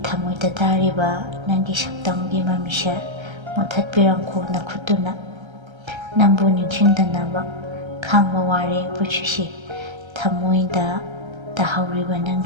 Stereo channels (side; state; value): left; late; 1.3 ms